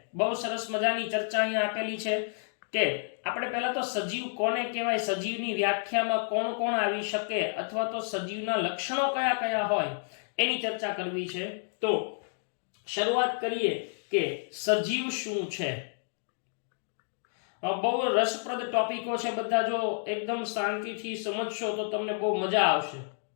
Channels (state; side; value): silent; right; digital silence